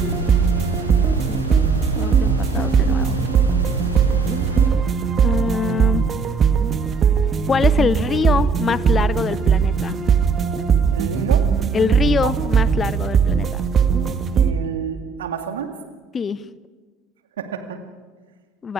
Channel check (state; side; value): quieter; left; 4.2 dB